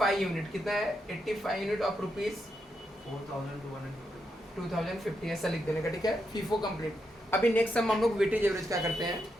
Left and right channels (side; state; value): both; normal; correlation 0.83